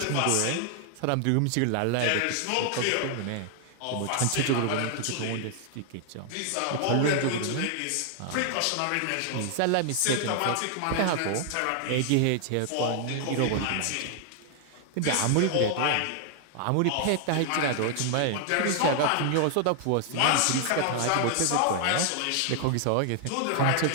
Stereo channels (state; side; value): different; both; correlation 0.00